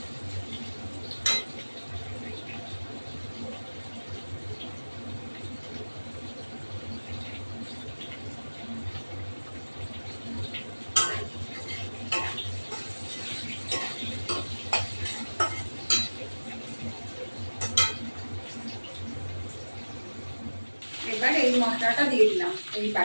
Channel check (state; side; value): inverted; both; correlation -1.00